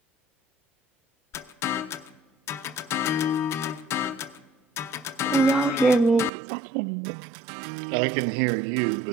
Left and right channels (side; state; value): left; drops out; at 6.3 s